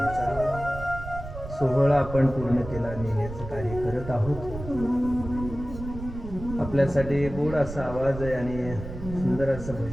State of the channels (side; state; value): right; noise; rumble, 10 dB below the sound